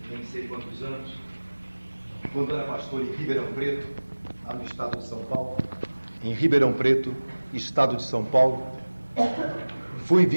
nem sei quantos anos, quando era pastor em Ribeirão Preto, lá no estado de São Paulo. Em Ribeirão Preto, estado de São Paulo, fui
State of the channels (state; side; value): inverted; both; correlation -1.00